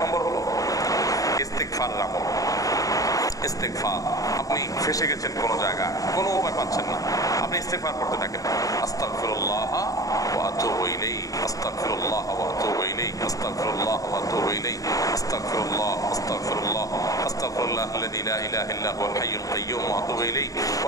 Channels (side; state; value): right; late; 0.17 ms